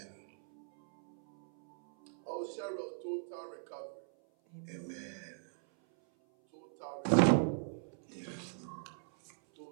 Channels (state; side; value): silent; left; 52 dB below the other